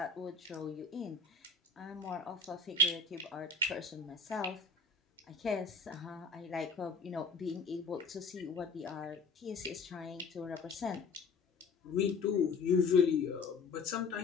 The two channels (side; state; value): right; quieter; 4.2 dB